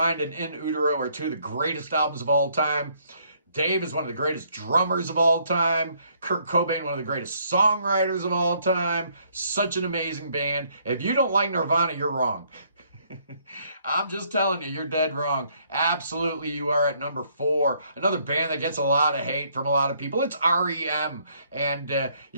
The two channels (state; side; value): inverted; both; correlation -0.67